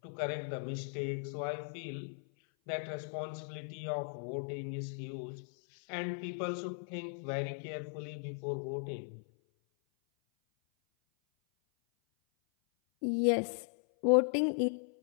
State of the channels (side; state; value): right; silent; 53 dB below the other